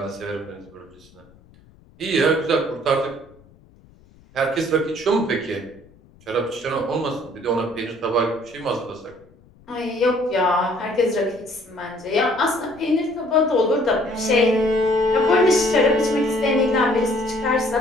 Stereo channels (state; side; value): noise; left; rumble, 27 dB below the sound